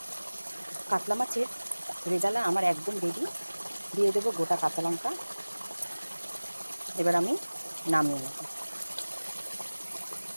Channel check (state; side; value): inverted; both; correlation -1.00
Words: কাতলা মাছের রেজালা আমার একদম রেডি। দিয়ে দেবো গোটা কাঁচা লঙ্কা। এবার আমি নামিয়ে নেব।